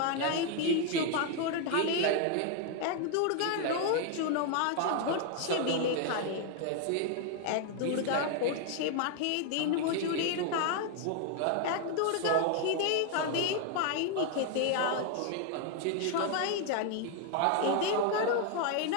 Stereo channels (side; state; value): both; different; correlation 0.00